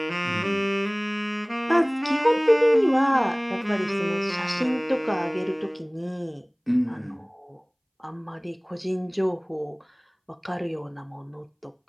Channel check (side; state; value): both; identical; correlation 1.00